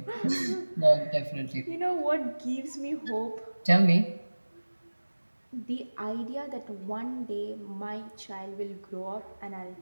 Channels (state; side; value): inverted; both; correlation -1.00